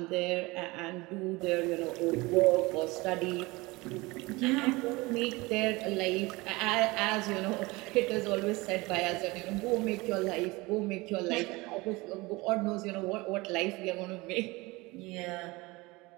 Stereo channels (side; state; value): left; quieter; 23.0 dB